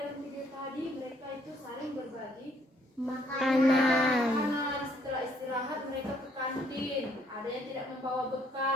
video tadi, mereka itu saling berbagi Makanan. makanan. Setelah istirahat mereka ke kantin. Ada yang tidak membawa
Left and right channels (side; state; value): both; normal; correlation 0.67